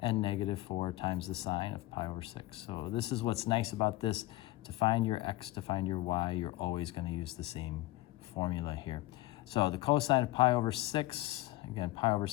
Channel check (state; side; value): quieter; right; 17.8 dB